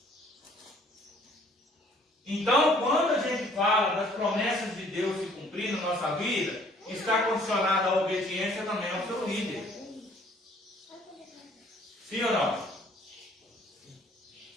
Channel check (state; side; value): normal; both; correlation 0.58